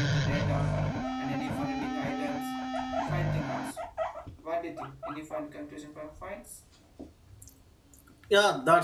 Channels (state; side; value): identical; both; correlation 1.00